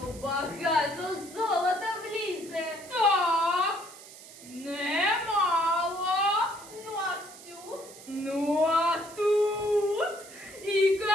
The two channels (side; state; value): right; noise; hiss, 18 dB below the sound